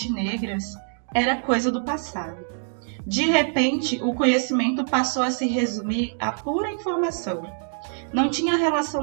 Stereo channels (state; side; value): silent; left; digital silence